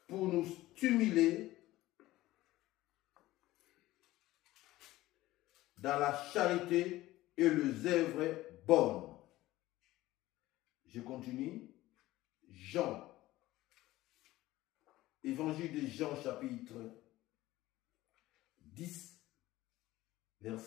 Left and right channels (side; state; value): right; quieter; 16.9 dB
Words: pour nous stimuler dans la charité et les œuvres bonnes. Je continue. Jean. Évangile de Jean chapitre 10,